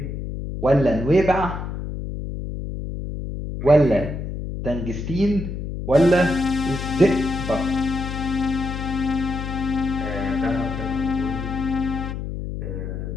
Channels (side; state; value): left; noise; hum, 6 dB below the sound